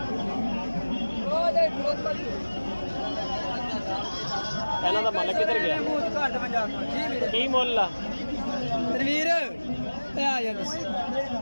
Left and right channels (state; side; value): inverted; both; correlation -1.00